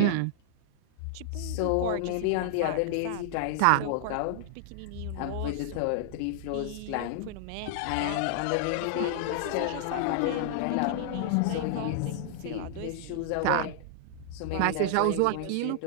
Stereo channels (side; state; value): both; different; correlation -0.01